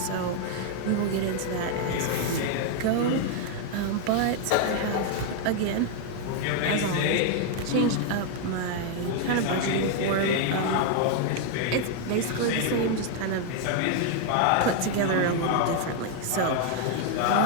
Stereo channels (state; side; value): different; both; correlation 0.00